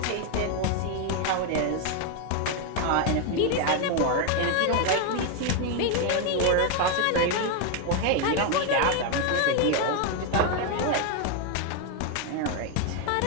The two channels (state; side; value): different; both; correlation 0.01